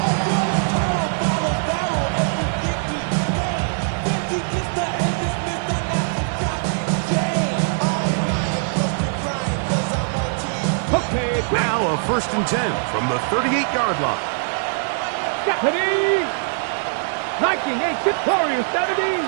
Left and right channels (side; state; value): left; silent; digital silence